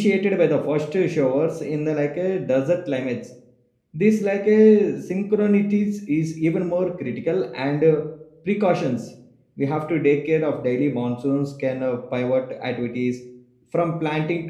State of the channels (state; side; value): identical; both; correlation 1.00